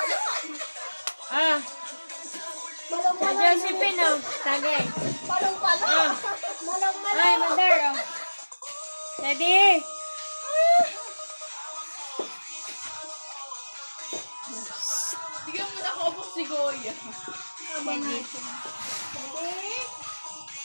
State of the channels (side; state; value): both; inverted; correlation -1.00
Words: Ah! Malong-malo. Josephine oh. Tagay. Palong-palo. Ah! Malong-malo. Ay, mother oh. Sedi! Bigyan mo na ako si Goya. Sedi.